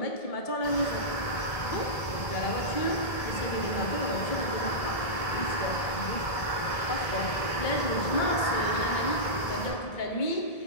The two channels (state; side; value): late; right; 1.7 ms